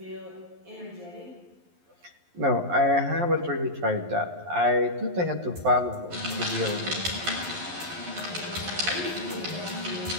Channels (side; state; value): left; late; 11 ms